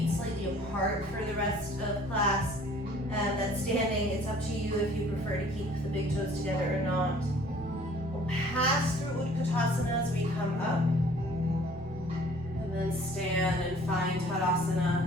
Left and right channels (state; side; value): normal; both; correlation 0.54